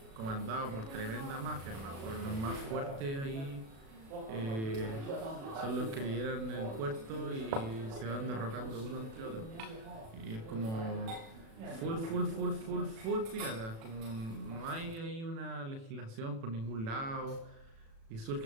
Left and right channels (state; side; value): late; left; 36 ms